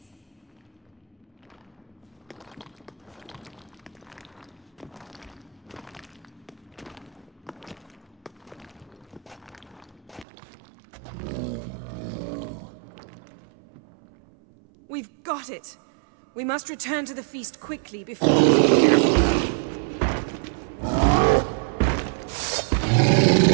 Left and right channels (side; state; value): left; drops out; at 10.2 s